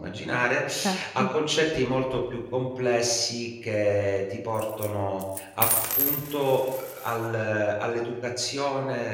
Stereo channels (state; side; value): identical; both; correlation 1.00